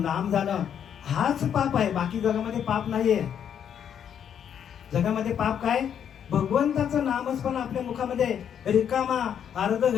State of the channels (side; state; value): right; quieter; 8.7 dB